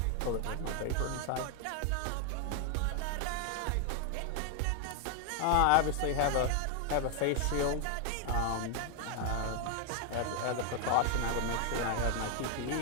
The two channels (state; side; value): different; both; correlation 0.00